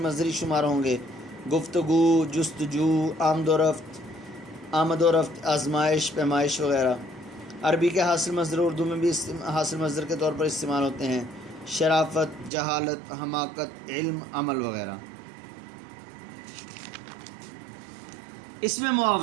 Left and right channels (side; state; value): left; drops out; at 12.5 s